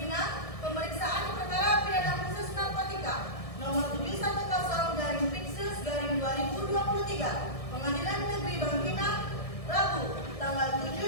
pemeriksaan perkara pidana khusus narkotika nomor 710/Piksus/2023. Pengadilan Negeri Bangkinang, Rabu, tanggal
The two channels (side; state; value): right; late; 1.6 ms